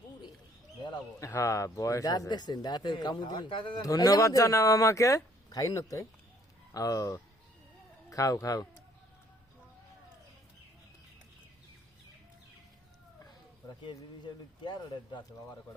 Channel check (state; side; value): normal; both; correlation 0.62